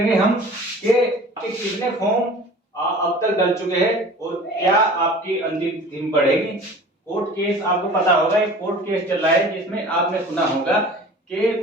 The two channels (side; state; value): both; normal; correlation 0.43